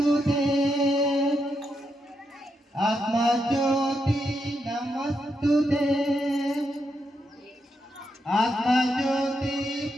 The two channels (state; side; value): normal; both; correlation 0.82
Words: ಆತ್ಮಜ್ಯೋತಿ ನಮಸ್ತುತೆ ಆತ್ಮಜ್ಯೋತಿ